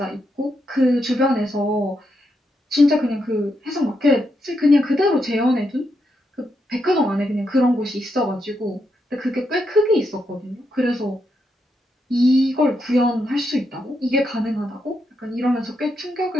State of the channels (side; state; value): both; normal; correlation 0.82